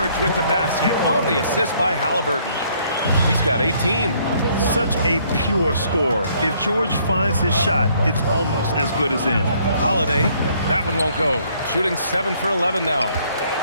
with the basket on the assist by Halliburton. He's got 18. Such a pure scorer. If George finds his shot, it's almost as good as in. Holiday, that one won't go. Shooting 7 for 11 now.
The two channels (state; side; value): inverted; both; correlation -0.65